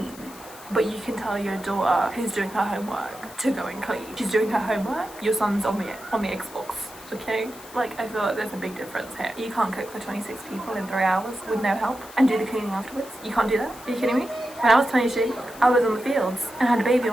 But you can tell your daughter who's doing her homework to go and clean. She's doing her homework, your son's on the Xbox. Okay? Like, I feel like there's a big difference here. You can't cook for 26 people in 3 hours with no help and do the cleaning afterwards. You can't do that? Are you kidding me? When I was 22, I was on the fields and had a baby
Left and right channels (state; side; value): noise; left; hiss, 18 dB below the sound